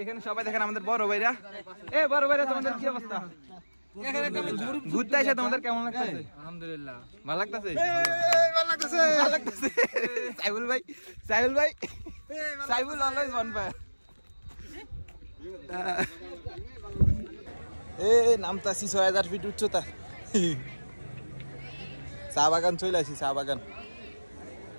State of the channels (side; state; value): both; inverted; correlation -1.00